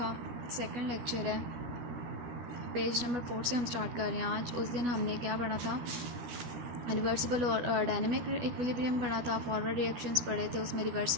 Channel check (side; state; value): left; late; 12 ms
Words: सेकंड लेक्चर है। पेज नंबर 4 से हम स्टार्ट कर रहे हैं। आज उस दिन हमने क्या पढ़ा था, रिवर्सिबल और डायनेमिक इक्विलिब्रियम पढ़ा था, फॉरवर्ड रिएक्शंस पढ़े थे, उसमें